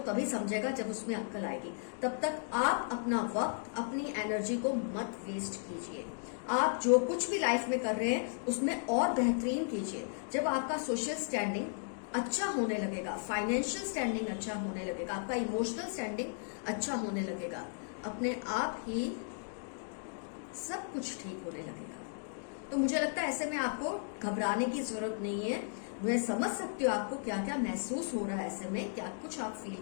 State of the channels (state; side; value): silent; right; digital silence